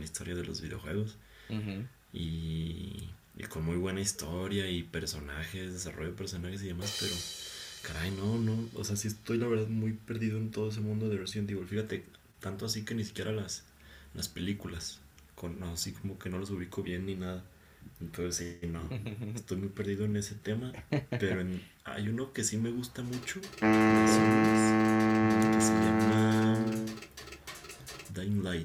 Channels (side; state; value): both; identical; correlation 1.00